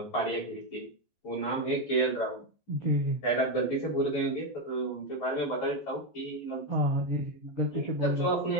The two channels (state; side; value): late; right; 14 ms